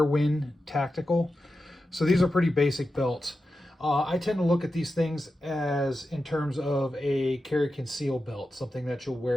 Tactical. So these are pretty basic belts. I tend to look at these things as in terms of a carry conceal belt, something that you'll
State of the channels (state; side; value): normal; both; correlation 0.91